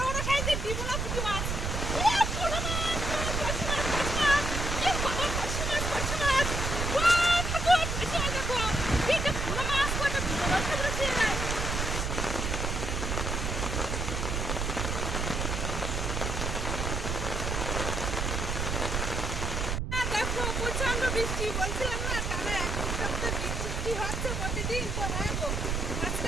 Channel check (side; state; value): right; noise; rumble, 1 dB below the sound